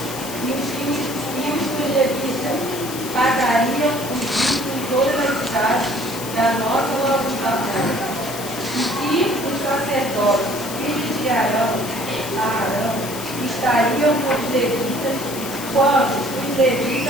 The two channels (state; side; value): noise; left; hiss, 10 dB below the sound